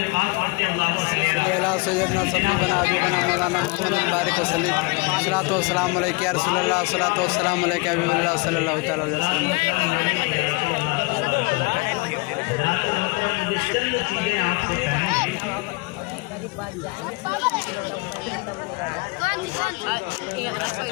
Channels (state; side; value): quieter; right; 27.2 dB